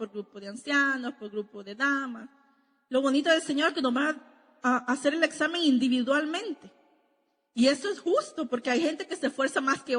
grupo de ancianos, por grupo de damas. Lo bonito del Señor es que nos va a hacer el examen individualmente. Y eso es justo porque hay gente que se esfuerza más que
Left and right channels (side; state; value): both; identical; correlation 1.00